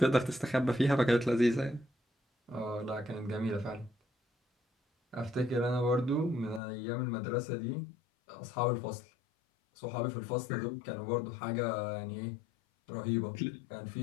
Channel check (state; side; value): drops out; right; at 6.6 s